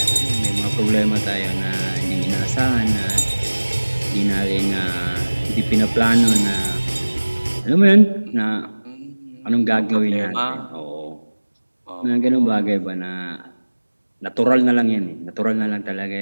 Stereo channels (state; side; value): inverted; both; correlation -1.00